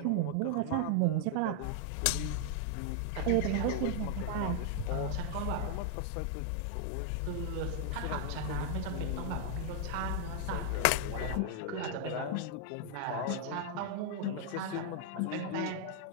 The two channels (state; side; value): different; both; correlation 0.00